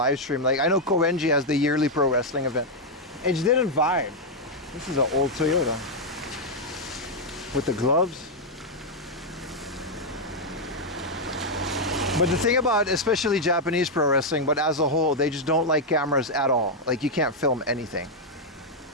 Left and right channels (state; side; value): normal; both; correlation -0.02